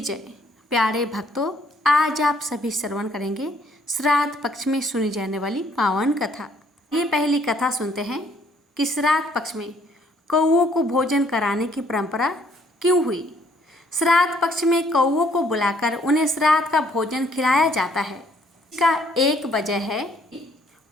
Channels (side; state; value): both; normal; correlation 0.64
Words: प्यारे भक्तों, आज आप सभी श्रवण करेंगे श्राद्ध पक्ष में सुनी जाने वाली पावन कथा। ये पहली कथा सुनते हैं कि श्राद्ध पक्ष में कौओं को भोजन कराने की परंपरा क्यों हुई। श्राद्ध पक्ष में कौओं को बुलाकर उन्हें श्राद्ध का भोजन खिलाया जाता है। इसका एक वजह है,